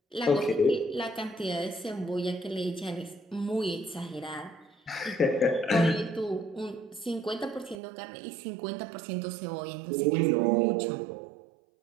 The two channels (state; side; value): drops out; left; at 7.8 s